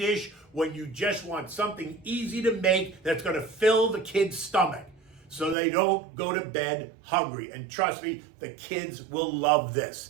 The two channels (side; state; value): left; drops out; at 5.6 s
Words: when you just want something easy to make that's going to fill the kid's stomach, so they don't go to bed hungry. And trust me, the kids will love this.